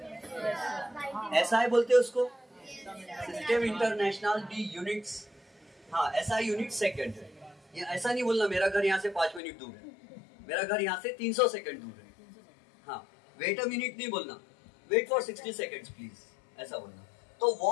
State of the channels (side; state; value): right; drops out; at 9.4 s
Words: ऐसा है बोलते हैं उसको, सिस्टम इंटरनेशनल डी यूनिट्स, हाँ ऐसा यूनिट सेकंड है। ये ऐसा नहीं बोलना मेरा घर यहाँ से 5 मिनट दूर है, मेरा घर यहाँ से 300 सेकंड दूर है, हाँ वेट अ मिनट नहीं बोलना, वेट फॉर 60 सेकंड्स प्लीज, ऐसा बोलना। तो